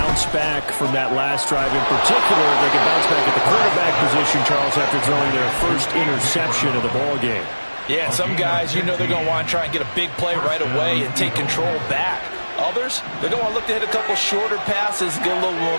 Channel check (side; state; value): both; inverted; correlation -1.00